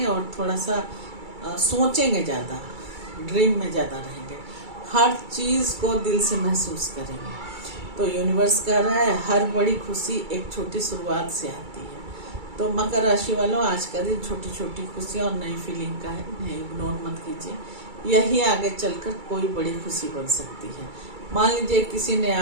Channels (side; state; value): left; late; 2.3 ms